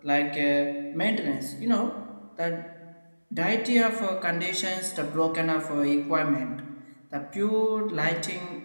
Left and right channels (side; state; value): both; inverted; correlation -1.00